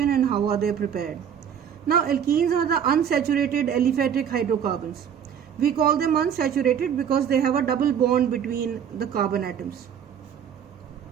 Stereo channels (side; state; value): left; quieter; 8.4 dB